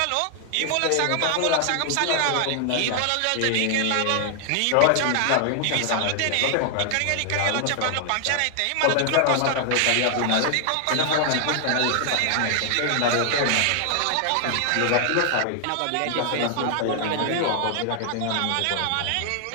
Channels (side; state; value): both; different; correlation 0.00